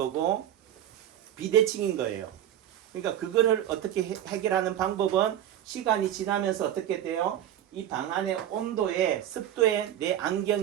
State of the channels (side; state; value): left; quieter; 11.3 dB